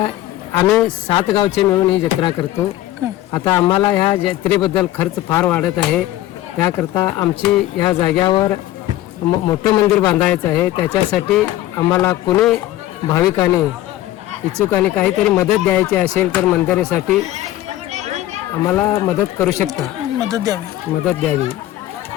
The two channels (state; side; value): quieter; right; 14.8 dB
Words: आम्ही 7 गावचे मिळून ही जत्रा करतो. आता आम्हाला ह्या जत्रेबद्दल खर्च फार वाढत आहे. त्याकरता आमची ह्या जाग्यावर मोठं मंदिर बांधायचं आहे. त्याच्यासाठी आम्हाला कोणी भाविकांनी इच्छुकांनी काहीतरी मदत द्यायची असेल तर मंदिरासाठी आम्हाला मदत करू शकता. मदत द्यावी.